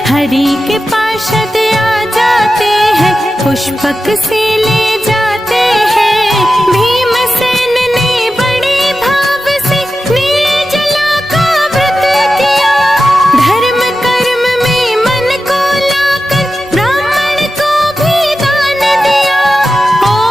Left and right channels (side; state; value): both; normal; correlation 0.92